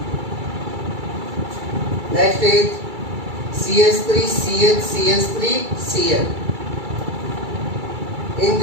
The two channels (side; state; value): left; late; 2.3 ms